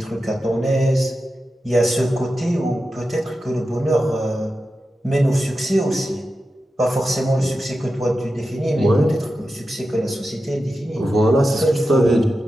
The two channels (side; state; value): both; normal; correlation 0.91